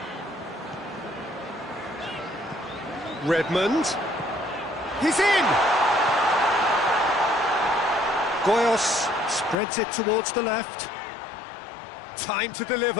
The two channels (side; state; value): right; drops out; at 9.6 s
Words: Redmond. He's in! Goyos spreads it towards the left. Time to